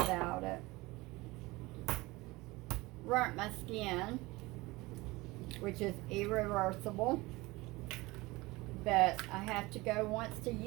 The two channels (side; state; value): left; quieter; 21.6 dB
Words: it. Burnt my skin, which is irreversible, but I have to go once a